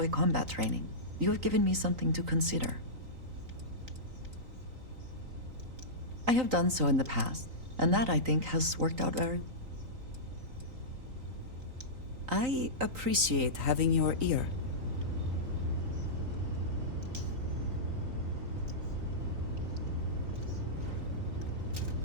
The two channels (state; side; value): late; left; 3.9 ms